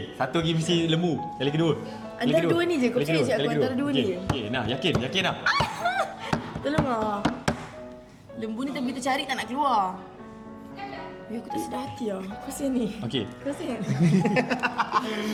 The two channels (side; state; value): both; identical; correlation 1.00